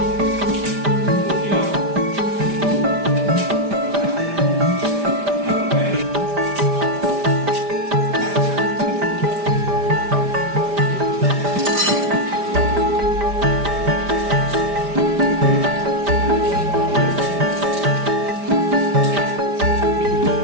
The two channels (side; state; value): left; late; 5.0 ms